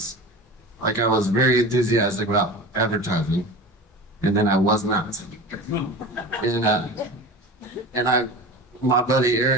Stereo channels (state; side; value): normal; both; correlation 0.33